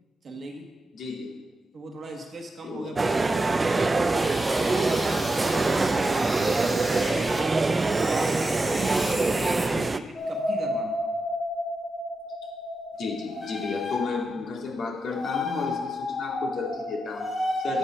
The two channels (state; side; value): normal; both; correlation 0.88